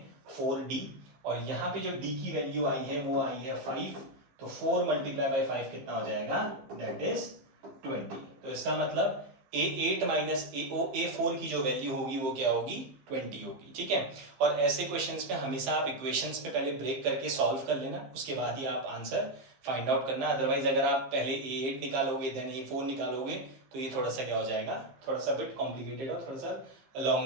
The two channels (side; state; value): left; late; 15 ms